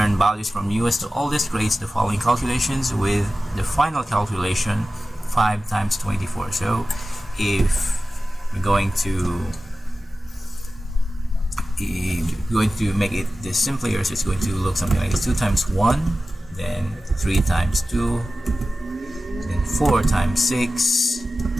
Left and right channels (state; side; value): normal; both; correlation 0.95